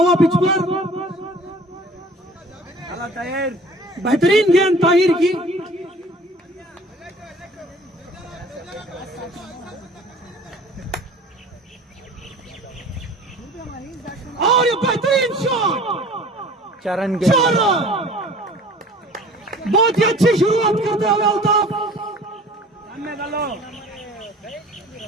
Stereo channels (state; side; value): normal; both; correlation 0.47